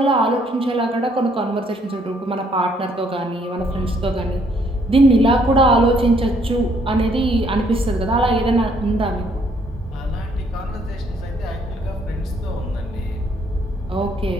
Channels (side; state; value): both; normal; correlation 0.67